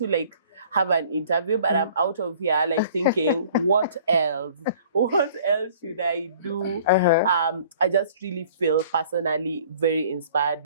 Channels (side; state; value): both; inverted; correlation -0.53